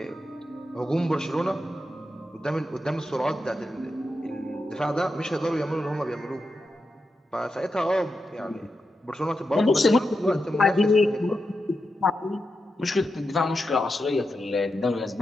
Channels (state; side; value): normal; both; correlation 0.88